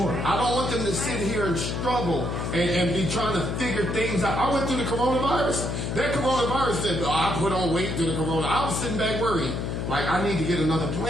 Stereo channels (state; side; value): noise; left; hum, 2 dB below the sound